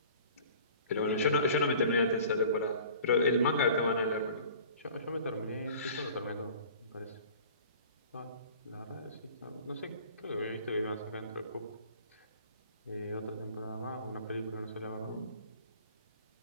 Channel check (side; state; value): both; inverted; correlation -0.46